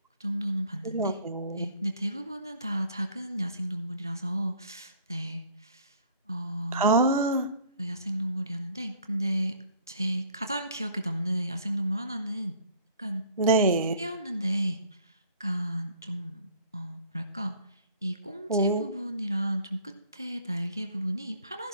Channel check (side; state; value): both; inverted; correlation -0.53